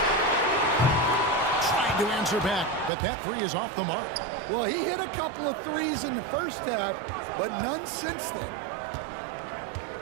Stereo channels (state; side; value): drops out; left; at 2.9 s